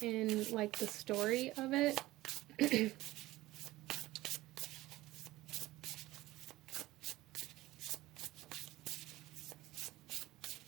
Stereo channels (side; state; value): left; quieter; 17.5 dB